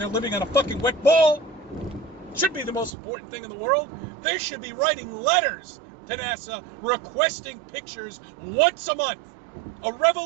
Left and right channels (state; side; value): drops out; left; at 2.9 s